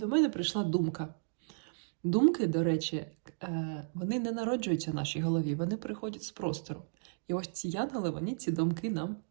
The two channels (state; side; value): silent; left; digital silence